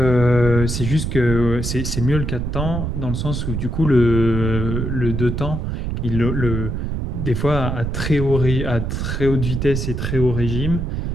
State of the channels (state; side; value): noise; right; rumble, 2 dB below the sound